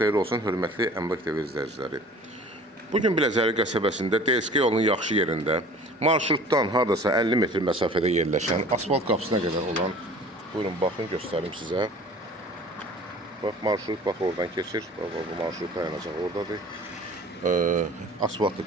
olsun, hörmətli Əmlak TV izləyiciləri. Bugün Biləcəri qəsəbəsində DSK yolunun yaxşı yerində, marşrutdan hardasa 50 metr məsafədə yerləşən, asfalt qapısına qədər olan, buyurun, baxın, göstərim sizə. Bax, marşrut, bax, oradan keçir, bu marşrut dayanacaq oradadır. Asfaltlı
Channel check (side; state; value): both; normal; correlation 0.45